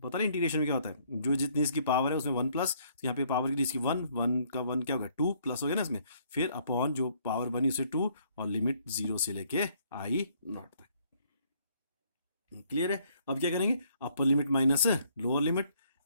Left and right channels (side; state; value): both; inverted; correlation -0.65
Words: नहीं इंटीग्रेशन में क्या होता है? जो जितनी इसकी पावर है उसमें 1 प्लस, तो यहाँ पे पावर की इसकी 1 का 1 क्या होगा? 2 प्लस हो गया ना इसमें, फिर अपॉन जो पावर बनी उसे 2 और लिमिट 0 से लेके I नॉट तक। क्लियर है? अब क्या करेंगे? Upper limit minus lower limit